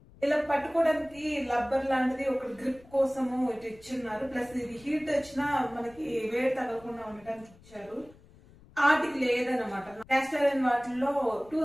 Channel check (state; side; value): noise; left; rumble, 25 dB below the sound